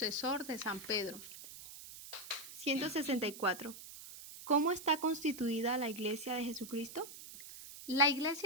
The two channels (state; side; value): noise; right; hiss, 14 dB below the sound